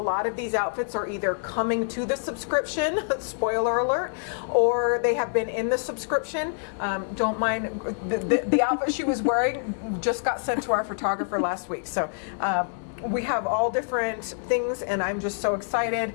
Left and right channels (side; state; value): right; silent; 61 dB below the other